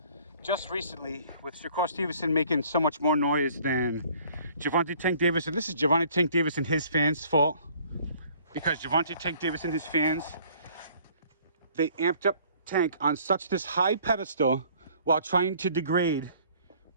just recently, with Shakur Stevenson making so much more noise than Gervonta Tank Davis, and this is Gervonta Tank Davis and his fans' fault, because Gervonta Tank Davis and his fans, they amped up Tank on such this high pedestal while trying to degrade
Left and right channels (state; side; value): inverted; both; correlation -0.57